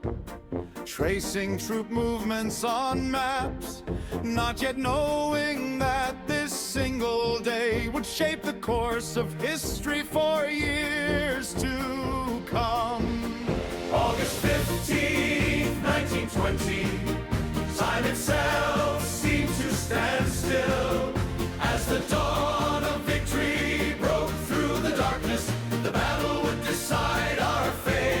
tracing troop movements on maps, not yet knowing that this single day would shape the course of history for years to come. August 15th, 1920, time itself seemed to stand still as the dawn of victory broke through the darkness. The battle would decide our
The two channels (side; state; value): both; identical; correlation 1.00